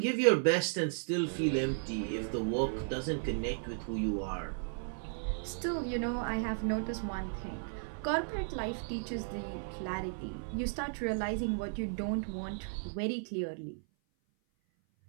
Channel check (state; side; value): silent; left; 55 dB below the other